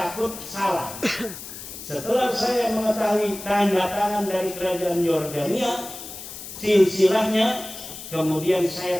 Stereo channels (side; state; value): left; noise; hiss, 12 dB below the sound